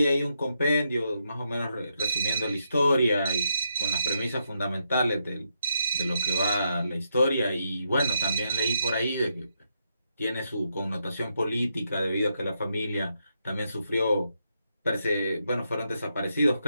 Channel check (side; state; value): both; inverted; correlation -0.81